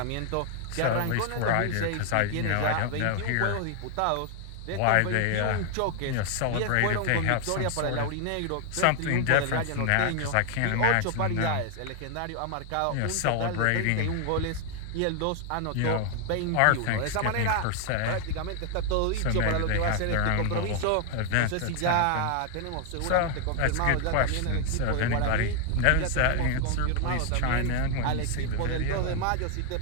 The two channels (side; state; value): both; different; correlation 0.00